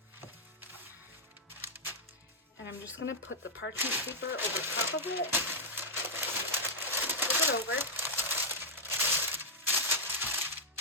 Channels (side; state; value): both; normal; correlation -0.06